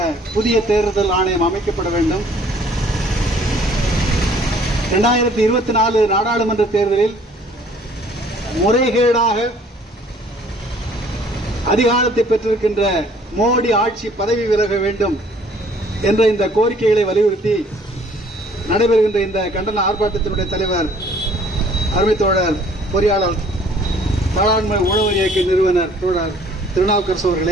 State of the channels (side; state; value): both; normal; correlation 0.57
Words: புதிய தேர்தல் ஆணையம் அமைக்கப்பட வேண்டும். 2024 நாடாளுமன்ற தேர்தலில் முறைகேடாக அதிகாரத்தை பெற்றிருக்கின்ற மோடி ஆட்சி பதவி விலக வேண்டும் என்ற இந்த கோரிக்கைகளை வலியுறுத்தி நடைபெறுகின்ற இந்த கண்டன ஆர்ப்பாட்டத்தினுடைய தலைவர் அருமை தோழர் பொறியாளர் பாராளுமன்ற உழவர் இயக்க நிறுவனர் தோழர் திருநாவுக்கரசு